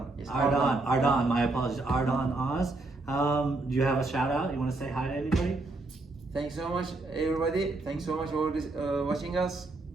Yes, Ardan. My apologies. Ardan Oz. Do you have a shout out? You want to say hi to anybody? Thanks so much, everybody. Thanks so much for watching us.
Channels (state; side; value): quieter; left; 3.1 dB